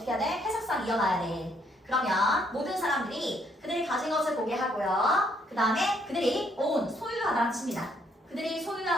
해야 돼? 해석상 이어놔야 돼. 그러면 모든 사람들이 그들이 가진 것을 보게 하고요. 그 다음에 그들이 own, 소유하다는 뜻입니다. 그들이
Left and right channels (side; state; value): both; normal; correlation 0.69